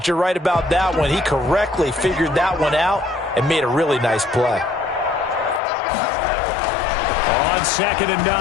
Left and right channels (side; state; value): right; drops out; at 5.6 s